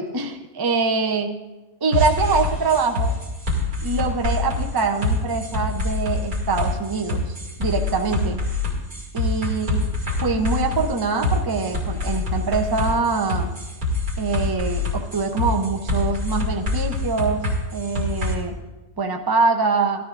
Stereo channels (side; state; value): both; normal; correlation 0.06